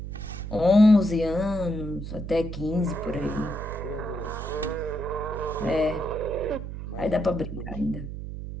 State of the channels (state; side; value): noise; right; hum, 7 dB below the sound